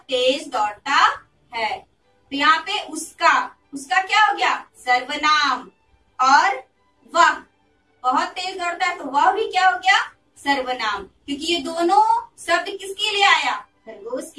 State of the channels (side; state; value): both; identical; correlation 1.00